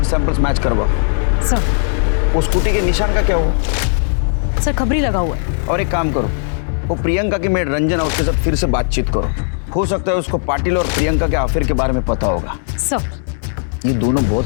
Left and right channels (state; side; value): silent; right; 68 dB below the other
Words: सैंपल्स मैच करवाओ। सर वो स्कूटी के निशान का क्या हुआ? सर खबरी लगा हुआ है। और एक काम करो, वो प्रियंका की मेड रंजन और उसके साथ फिर से बातचीत करो। हो सकता है उसको पाटिल और प्रियंका के अफेयर के बारे में पता होगा। सर ये दोनों बहुत